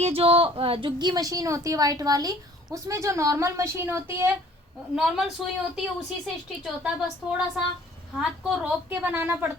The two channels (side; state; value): both; normal; correlation 0.53